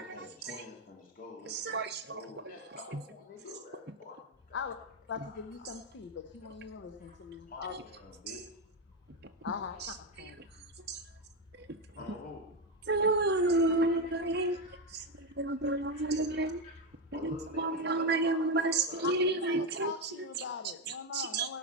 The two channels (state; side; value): normal; both; correlation 0.09